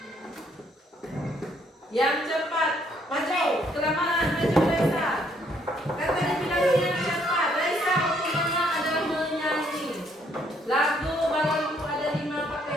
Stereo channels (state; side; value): normal; both; correlation 0.68